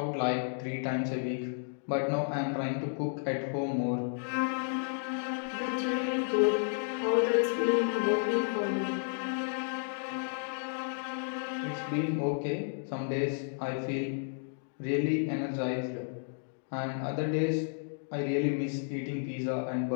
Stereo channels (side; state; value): right; silent; digital silence